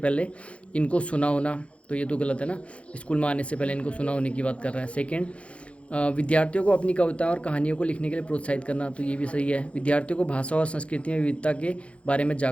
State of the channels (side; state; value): right; late; 0.062 ms